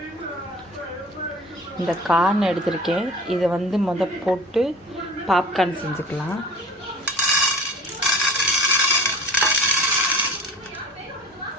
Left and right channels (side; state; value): both; normal; correlation 0.41